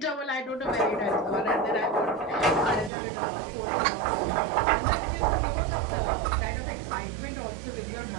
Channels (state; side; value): drops out; left; at 2.9 s